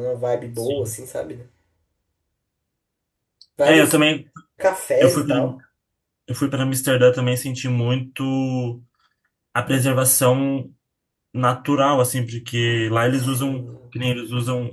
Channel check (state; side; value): identical; both; correlation 1.00